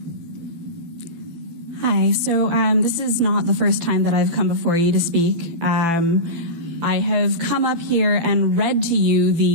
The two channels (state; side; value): late; left; 12 ms